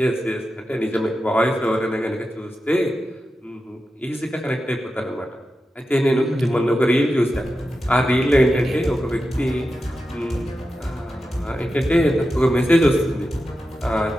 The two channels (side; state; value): both; normal; correlation 0.91